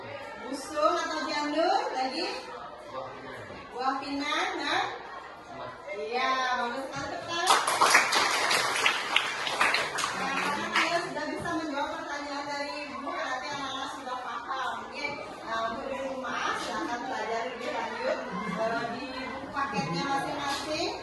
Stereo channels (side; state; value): both; identical; correlation 1.00